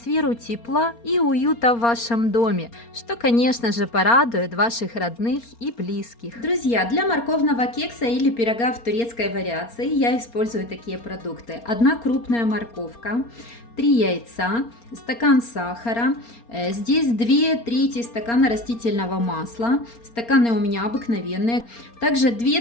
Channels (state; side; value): late; right; 4.3 ms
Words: тепла и уюта в вашем доме, что, конечно же, порадует ваших родных и близких. Друзья, для морковного кекса или пирога в турецкой вариации я использую такие продукты: 1 крупная морковка, 3 яйца, стакан сахара, здесь 2/3 стакана растительного масла, стаканы у меня обыкновенные, также